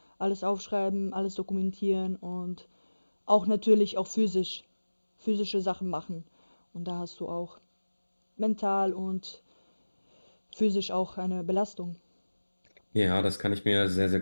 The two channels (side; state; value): both; inverted; correlation -1.00